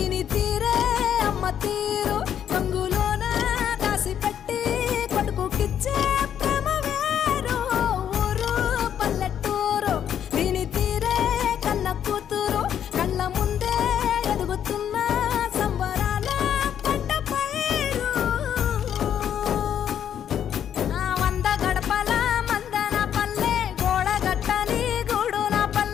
తీరే అమ్మ తీరు కంగులోన దాసి పెట్టి కొడుకుకిచ్చే ప్రేమ వేరు ఊరు పల్లెటూరు దీని తీరే కన్న కూతురు కళ్ళ ముందే ఎదుగుతున్న సంబరాల పంట పైరు వంద గడపల మందన పల్లె గోడ గట్టని గూడున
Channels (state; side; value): quieter; right; 9.4 dB